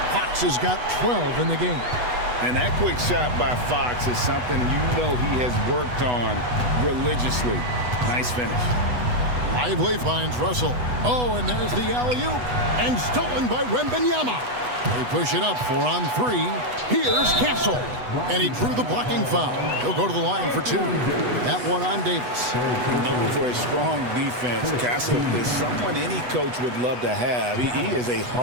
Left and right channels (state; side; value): late; left; 8.1 ms